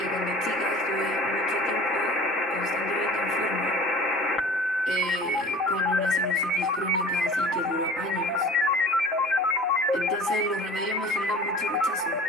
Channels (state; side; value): normal; both; correlation 0.43